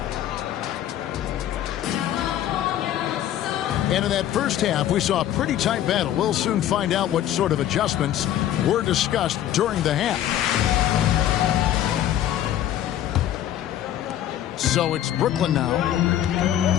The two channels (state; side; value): quieter; right; 11.7 dB